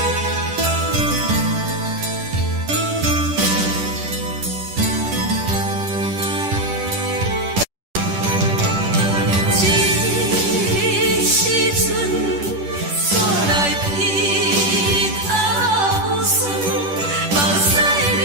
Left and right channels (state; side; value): late; left; 10 ms